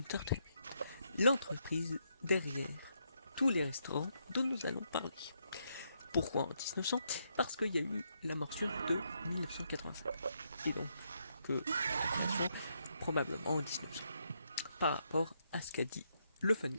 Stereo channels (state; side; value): inverted; both; correlation -0.78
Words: l'entreprise derrière tous les restaurants dont nous allons parler. Pourquoi en 1900 ? Parce qu'il y a eu la morsure de 1985. Et donc, probablement en 1900. Par rapport à ce qu'a dit le Fun